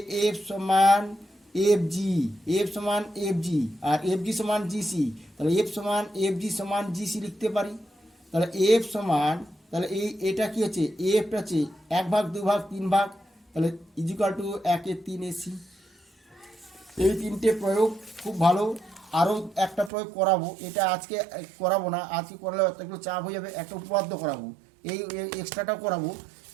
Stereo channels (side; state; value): left; drops out; at 19.9 s